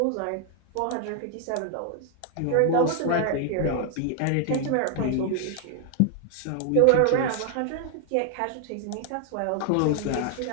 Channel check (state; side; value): different; both; correlation 0.00